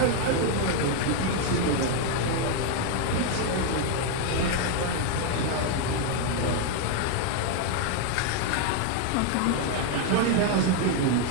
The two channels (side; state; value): both; different; correlation 0.01